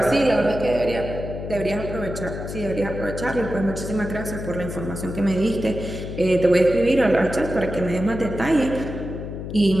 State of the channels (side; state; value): left; noise; hum, 7 dB below the sound